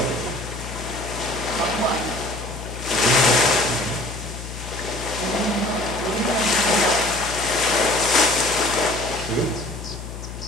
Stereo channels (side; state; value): left; noise; hum, 10 dB below the sound